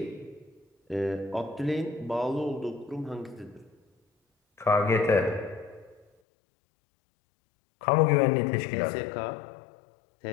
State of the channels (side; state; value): right; drops out; at 6.1 s